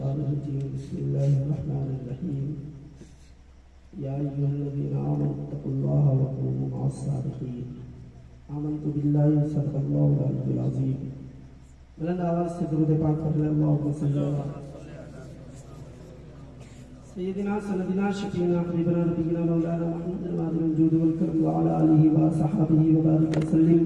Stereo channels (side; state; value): both; identical; correlation 1.00